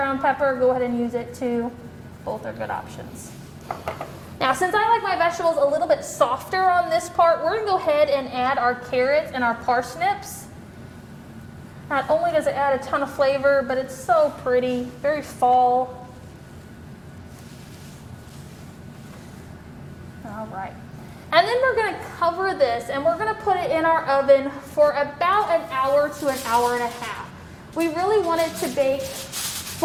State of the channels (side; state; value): both; identical; correlation 1.00